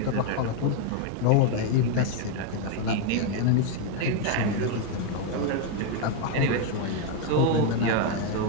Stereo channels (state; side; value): different; both; correlation 0.01